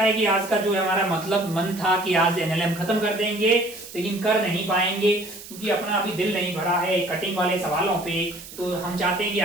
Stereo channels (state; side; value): noise; right; hiss, 15 dB below the sound